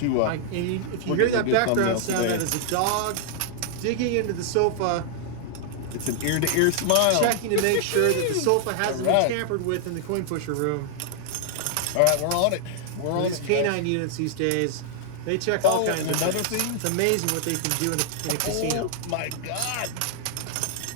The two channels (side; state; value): both; different; correlation -0.01